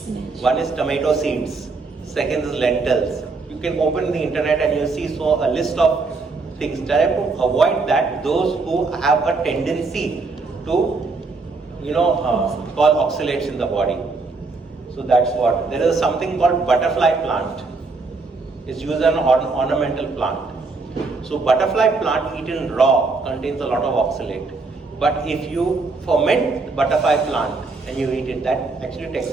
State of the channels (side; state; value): left; quieter; 4.0 dB